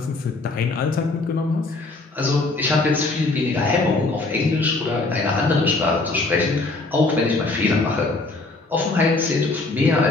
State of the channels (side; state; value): right; quieter; 3.3 dB